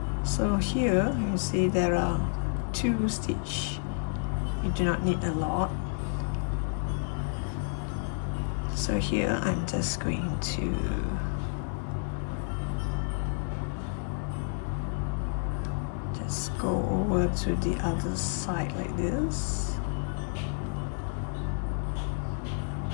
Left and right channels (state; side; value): silent; right; 58 dB below the other